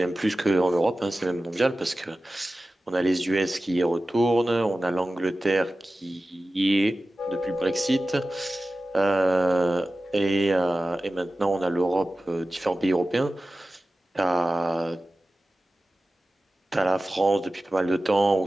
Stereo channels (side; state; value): both; normal; correlation 0.95